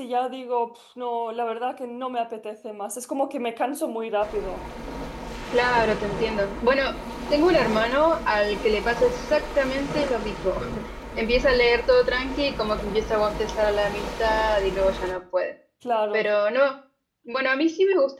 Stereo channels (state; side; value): identical; both; correlation 1.00